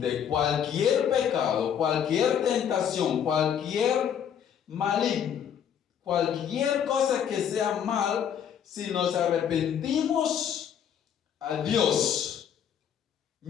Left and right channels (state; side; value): quieter; right; 8.7 dB